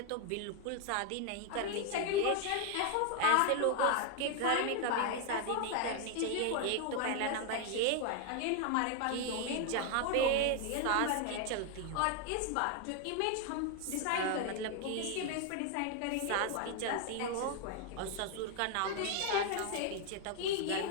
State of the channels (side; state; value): both; different; correlation 0.00